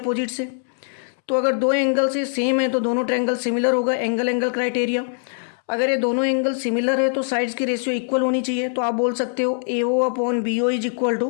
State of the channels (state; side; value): silent; right; 64 dB below the other